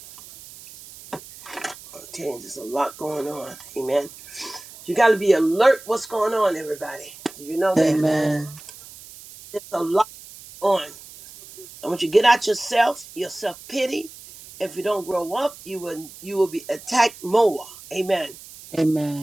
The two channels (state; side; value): noise; right; hiss, 18 dB below the sound